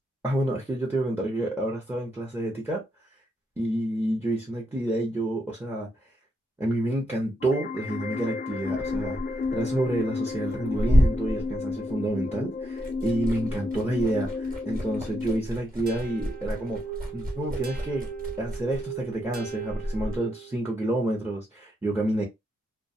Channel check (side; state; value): both; normal; correlation 0.80